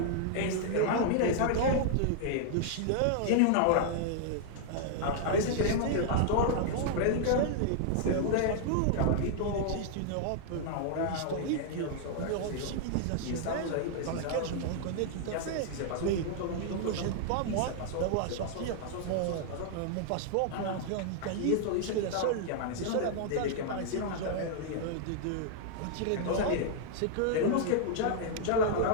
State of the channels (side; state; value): both; different; correlation -0.01